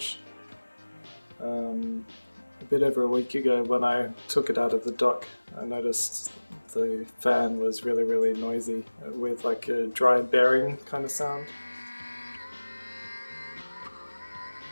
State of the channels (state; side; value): inverted; both; correlation -1.00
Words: A bit over a week ago when I took it out of the dock, I noticed the fan was really noisy with like a dry bearing kind of sound.